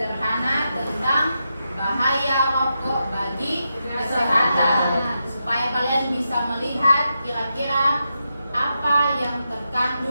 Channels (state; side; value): inverted; both; correlation -0.86